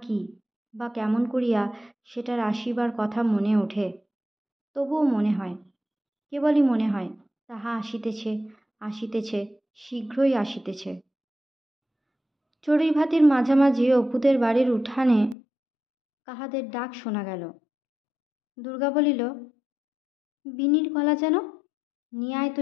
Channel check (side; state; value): right; drops out; at 15.4 s